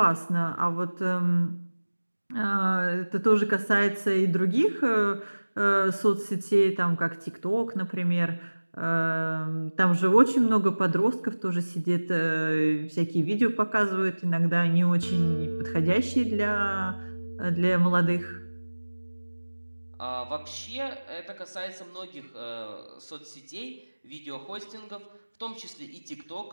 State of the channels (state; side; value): inverted; both; correlation -1.00